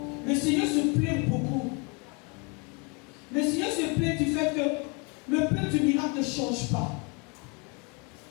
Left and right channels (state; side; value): quieter; right; 32.2 dB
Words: le Seigneur se plaît beaucoup. Le Seigneur se plaît du fait que le peuple du miracle ne change pas.